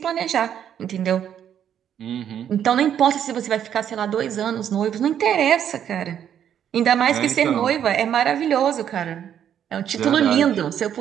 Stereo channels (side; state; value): left; quieter; 9.4 dB